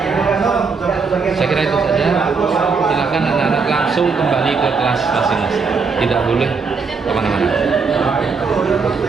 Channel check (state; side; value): quieter; left; 4.9 dB